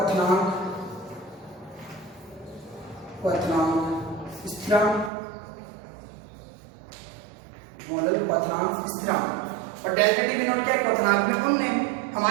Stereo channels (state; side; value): drops out; left; at 5.1 s